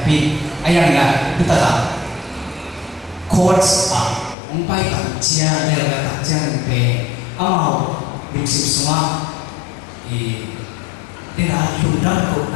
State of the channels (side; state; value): right; drops out; at 4.4 s